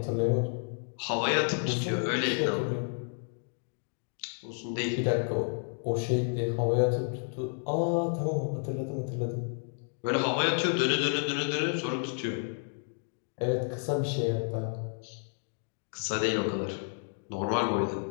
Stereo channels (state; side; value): silent; right; 57 dB below the other